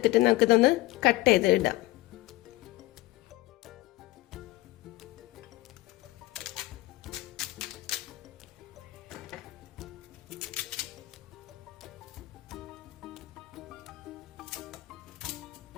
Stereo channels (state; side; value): quieter; right; 18.8 dB